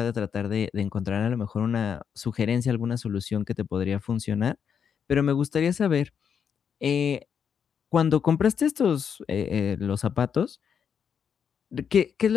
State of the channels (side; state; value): right; quieter; 7.4 dB